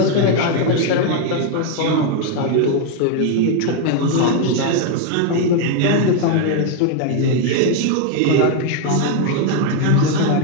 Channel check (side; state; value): both; different; correlation 0.01